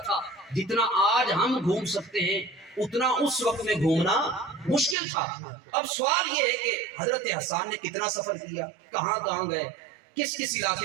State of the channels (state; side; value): drops out; left; at 5.0 s